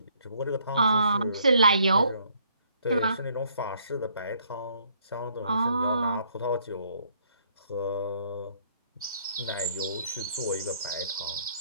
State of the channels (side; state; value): both; inverted; correlation -0.66